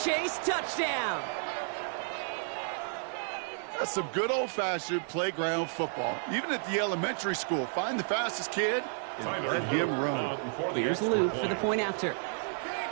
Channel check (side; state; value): left; silent; 57 dB below the other